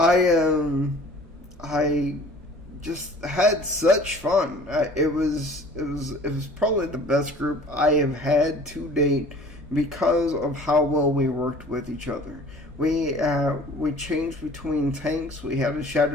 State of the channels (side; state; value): both; normal; correlation 0.48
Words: just had such fun. It was probably the best group I have had to date because of how well we worked with each other. We changed between tanks. We had a